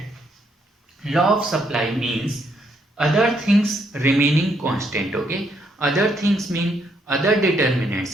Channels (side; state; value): both; normal; correlation 0.73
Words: law of supply means other things remaining constant. Okay, other things mean other